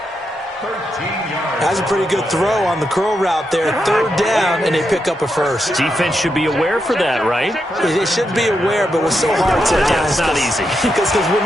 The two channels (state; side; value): normal; both; correlation 0.84